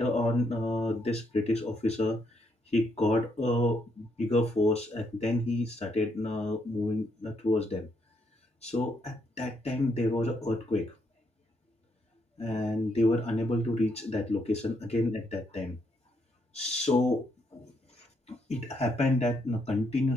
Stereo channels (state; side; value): normal; both; correlation 0.75